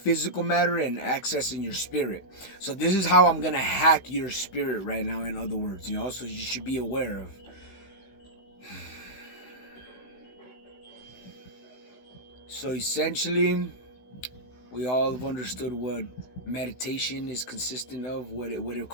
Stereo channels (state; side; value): late; right; 16 ms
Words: matter and accessing your spirit. So this is how I'm gonna hack your spirit right now, in other words, so you should be aware of. So essentially, we all have understood what meditation is consistent of, what it